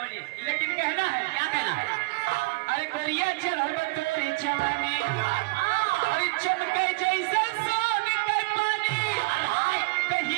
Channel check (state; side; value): quieter; left; 26.4 dB